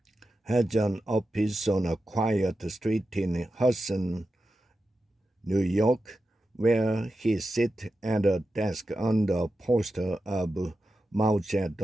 has an office on a quiet street in Hudson, New York, where he sits at a desk under a poster of Mao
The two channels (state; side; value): normal; both; correlation 0.91